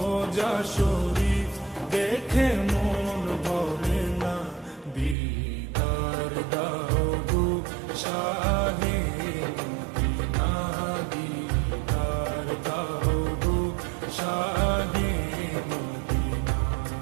শরীফ দেখে মন ভরে না। দিদার দাও গো শাহে মদিনা, দিদার দাও গো শাহে মদিনা।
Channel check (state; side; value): drops out; left; at 5.2 s